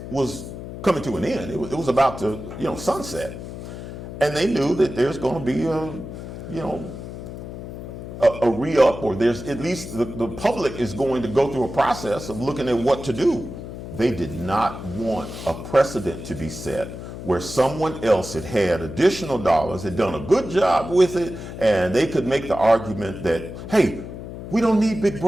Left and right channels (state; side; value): noise; left; hum, 10 dB below the sound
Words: was coming to an end. It was about to sunset, and they knew that there's going to be a re-up, or there's at least the public is going to go through a process of looking at what to do. They did not want a precedent to be set where someone else had additional dollars, had done a good job with it, and they could make the argument that, hey, we don't need Big